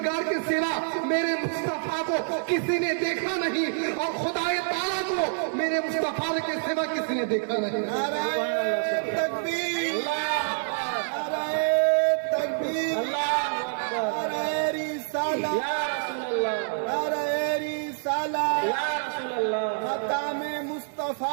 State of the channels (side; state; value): left; silent; digital silence